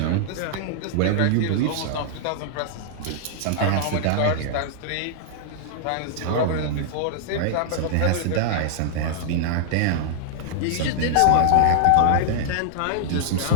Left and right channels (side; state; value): both; different; correlation -0.01